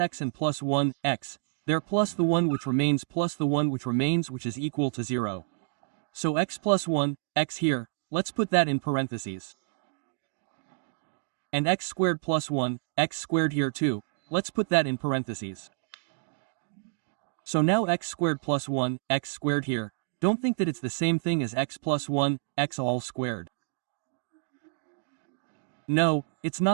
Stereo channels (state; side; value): silent; left; digital silence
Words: and plus 1, x, there plus the 1 which remains plus the 1 which remains which is equal to 0. So x plus 1, x here, let's put that in parentheses. And x squared plus 1, x squared here too, let's put that in parentheses. So now x squared plus 1, x squared here, don't think that it's the same thing as x plus 1, x all squared. No, it's